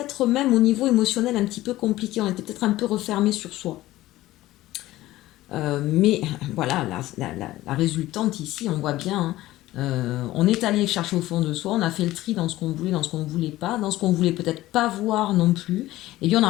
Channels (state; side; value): quieter; right; 16.3 dB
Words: même au niveau émotionnel un petit peu compliqué. On était peut-être un peu refermé sur soi. Mais voilà, la résultante ici, on voit bien, hein, on est allé chercher au fond de soi, on a fait le tri dans ce qu'on voulait, dans ce qu'on ne voulait pas, dans ce qu'on voulait peut-être pas voir non plus, et bien on